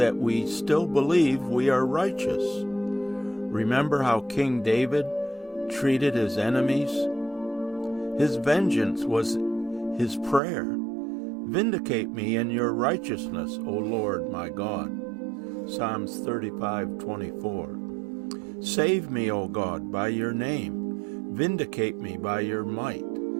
we still believe we are righteous. Remember how King David treated his enemies? His vengeance was his prayer. Vindicate me in your righteousness, O Lord my God. Psalms 35:24. Save me, O God, by your name. Vindicate me by your might.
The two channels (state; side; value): drops out; left; at 10.4 s